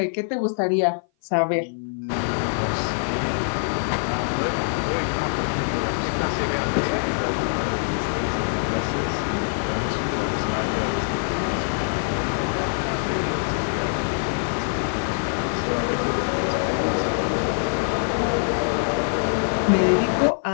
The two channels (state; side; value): silent; right; 57 dB below the other